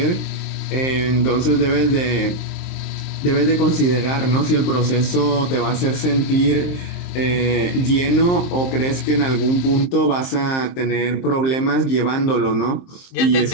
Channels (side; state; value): right; late; 23 ms